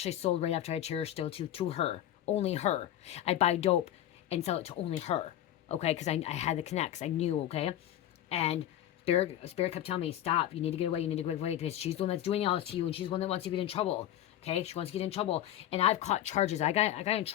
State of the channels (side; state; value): right; quieter; 12.1 dB